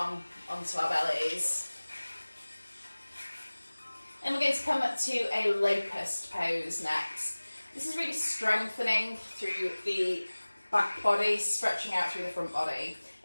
onto our bellies. And we're going to come up to a locust pose next. This is really strengthening through the back body, stretching out through the front body.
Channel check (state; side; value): inverted; both; correlation -1.00